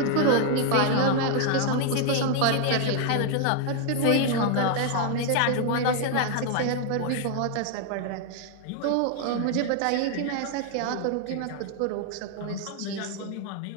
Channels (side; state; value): both; different; correlation 0.00